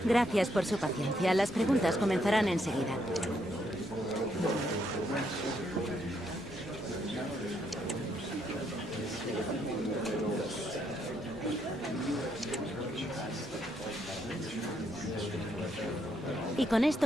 Gracias por su paciencia. Las preguntas comenzarán enseguida. Y con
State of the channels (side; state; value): both; normal; correlation 0.74